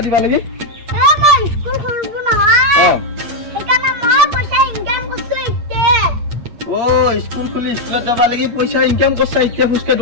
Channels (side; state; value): left; late; 8.5 ms